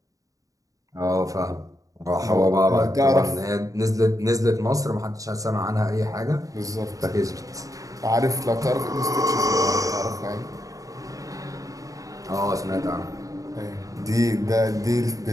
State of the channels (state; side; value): late; left; 0.16 ms